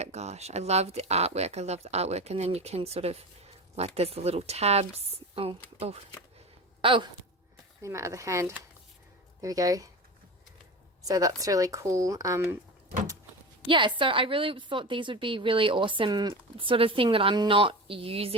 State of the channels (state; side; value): normal; both; correlation 0.28